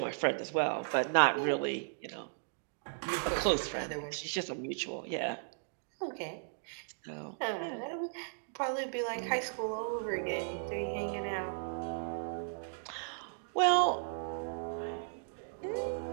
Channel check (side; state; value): left; silent; digital silence